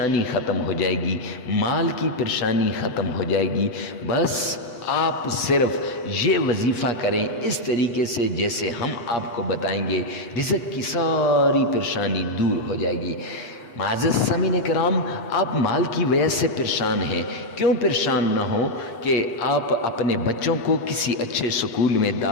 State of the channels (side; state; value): right; late; 8.0 ms